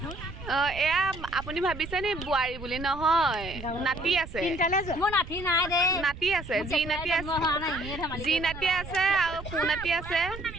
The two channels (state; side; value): noise; right; rumble, 12 dB below the sound